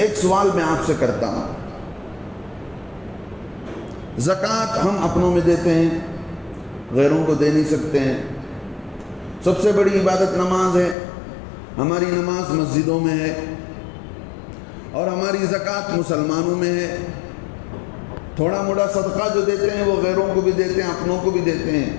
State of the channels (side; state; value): right; drops out; at 11.0 s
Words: سوال میں آپ سے کرتا ہوں، زکوٰۃ ہم اپنوں میں دیتے ہیں، غیروں کو دے نہیں سکتے ہیں۔ سب سے بڑی عبادت نماز ہے، ہماری نماز مسجدوں میں ہے، اور ہماری زکوٰۃ مسلمانوں میں ہے۔ تھوڑا موڑا صدقہ جو دیتے ہیں وہ غیروں کو بھی دیتے ہیں، اپنوں کو بھی دیتے